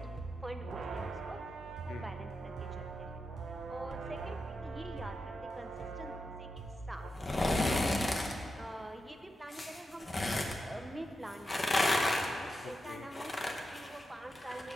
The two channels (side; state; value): both; normal; correlation 0.88